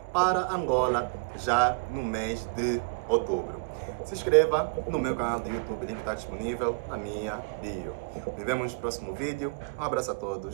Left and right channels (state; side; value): quieter; left; 33.3 dB